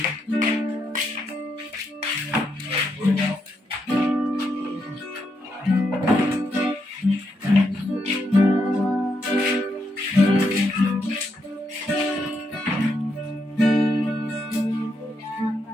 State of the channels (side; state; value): both; normal; correlation 0.80